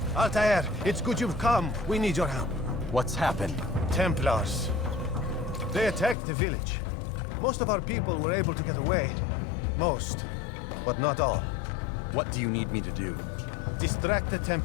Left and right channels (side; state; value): right; drops out; at 6.2 s